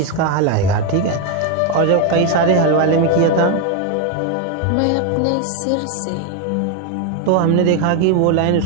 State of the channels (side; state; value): both; different; correlation 0.02